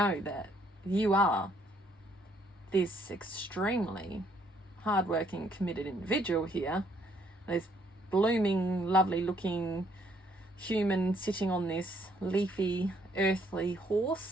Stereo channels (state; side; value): normal; both; correlation 0.68